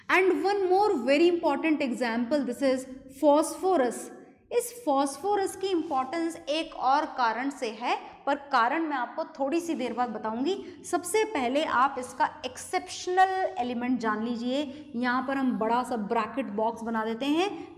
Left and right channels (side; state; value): both; identical; correlation 1.00